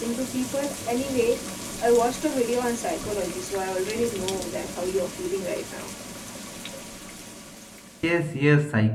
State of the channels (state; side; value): identical; both; correlation 1.00